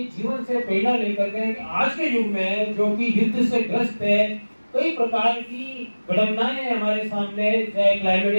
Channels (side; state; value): both; inverted; correlation -1.00